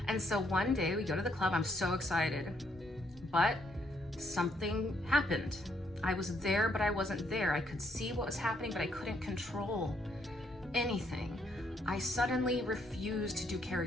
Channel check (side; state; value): both; normal; correlation 0.71